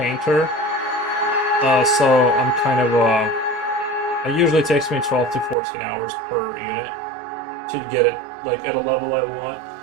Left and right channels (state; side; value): drops out; left; at 5.6 s